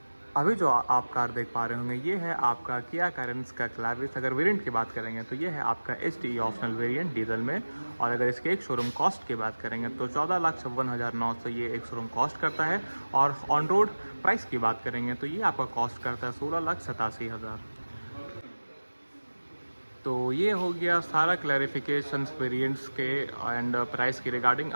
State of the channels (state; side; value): inverted; both; correlation -1.00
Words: अभी जो आप car देख पा रहे होंगे ये है आपका किया कैरेंस का क्लैविस। अगर वेरिएंट की बात करेंगे तो ये है आपका HDE ऑप्शनल वेरिएंट डीजल में। और अगर इसके एक शोरूम कॉस्ट की बात करेंगे तो 14,56,900 ये एक शोरूम कॉस्ट करता है। और ऑन रोड प्राइस की बात करेंगे तो ये आपका कॉस्ट करता है 16,87,000। तो ये हो गया सारा क्लैरिफिकेशंस वेरिएंट्स के एंड प्राइस की रिगार्डिंग।